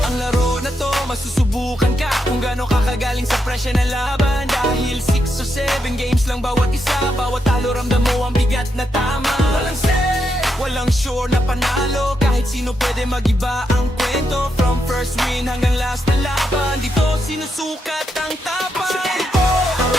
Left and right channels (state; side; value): normal; both; correlation 0.82